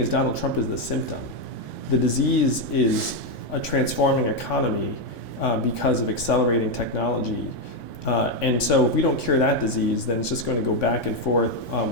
Donald Trump is the symptom. The disease is a transforming economy because of accelerating technology. And so if we don't cure that disease, then it's just going to go back and forth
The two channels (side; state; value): right; late; 3.5 ms